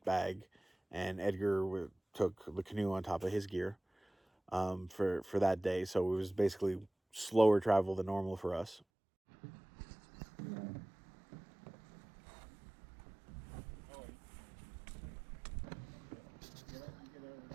bag, and Edgar took the canoe on top of his gear for that day. So it was basically slower travel than normal for us.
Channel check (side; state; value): left; drops out; at 8.8 s